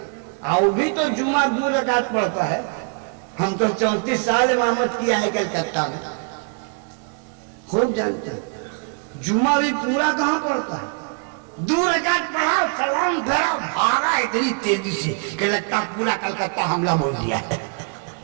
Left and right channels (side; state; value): left; quieter; 37.6 dB